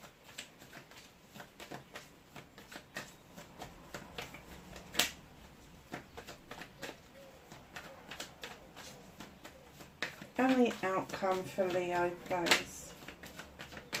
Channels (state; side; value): identical; both; correlation 1.00